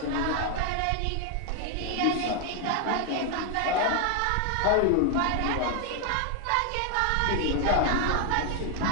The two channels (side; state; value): both; different; correlation 0.00